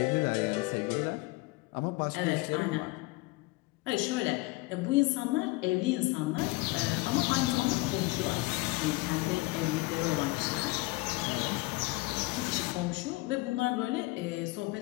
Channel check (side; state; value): right; quieter; 22.5 dB